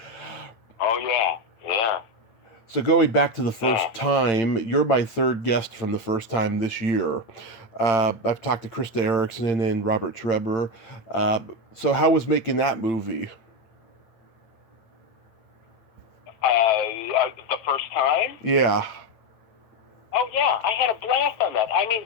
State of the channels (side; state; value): right; late; 8.9 ms